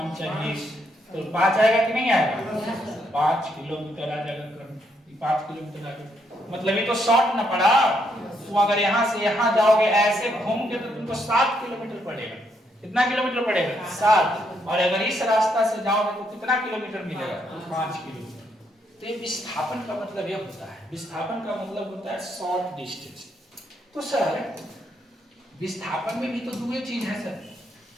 चाहिए, तो 5 आएगा कि नहीं आएगा? 5 किलोमीटर आ जाएगा कर्म, 5 किलोमीटर आ जाएगा। मतलब ये तो शॉर्ट ना पड़ा। तो अगर यहाँ से यहाँ जाओगे ऐसे घूम के तो तुमको 7 किलोमीटर पड़ेगा। कितना किलोमीटर पड़ेगा? 7। और अगर इस रास्ता से जाओगे तो कितना किलोमीटर मिलेगा? 5 किलोमीटर। तो ये विस्थापन का मतलब ये होता है, विस्थापन का मतलब होता है शॉर्ट डिस्टेंस। तो सर विस्थापन में भी तो दो चीज है सर,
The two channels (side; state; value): both; normal; correlation 0.75